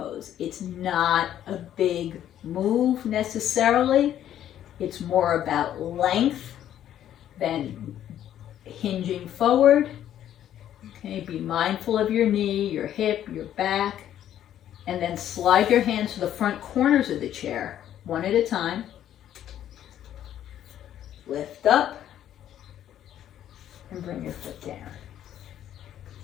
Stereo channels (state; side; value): quieter; right; 11.1 dB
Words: It's not a big move necessarily. It's more about length than hinging forward. Okay, be mindful of your knee, your hip, your back, and then slide your hands to the front corners of the chair, one at a time. Lift up and bring your foot down.